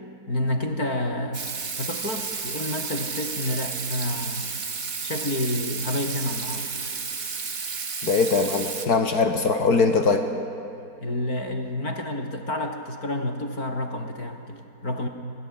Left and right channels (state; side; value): late; right; 4.1 ms